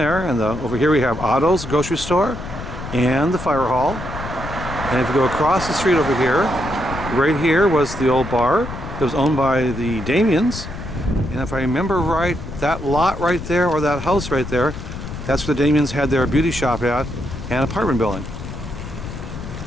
and over here we have Otto's grocery store and the fire hall. And if you go across the street over here, right here was the old bar that was owned by the Damians. And if I remember right, that lot right there, or that house right there, that's where the Damians had their beauty shop at and apartment building.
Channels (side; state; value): left; noise; rumble, 9 dB below the sound